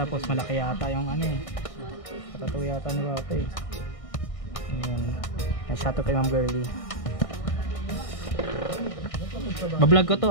malaki yata yung ano eh. Patatuloy yata ni Papa eh. Ayun. Shout out kay Ma'am Girly. Bablog ko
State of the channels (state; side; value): late; right; 1.6 ms